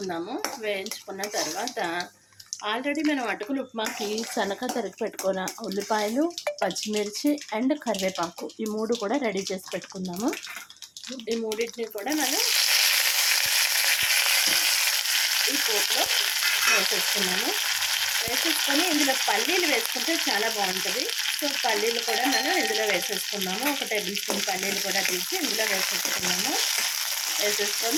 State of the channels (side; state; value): both; identical; correlation 1.00